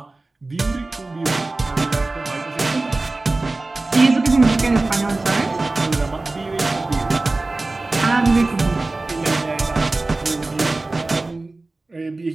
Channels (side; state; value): left; quieter; 3.2 dB